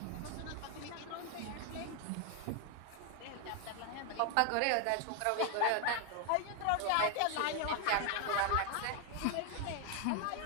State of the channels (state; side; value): different; both; correlation 0.01